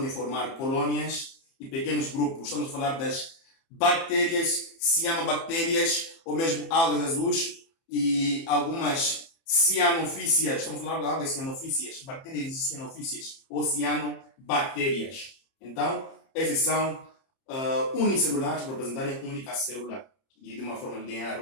formar colônias e pequenos grupos. Estamos a falar das bactérias, cianobactérias, ou mesmo algas azuis e algumas cianofícias. Estamos a falar de algas cianofícias, bactérias cianofícias ou cianobactérias. Então, esses são unicelulares para representarem única célula e de uma forma linear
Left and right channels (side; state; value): right; late; 30 ms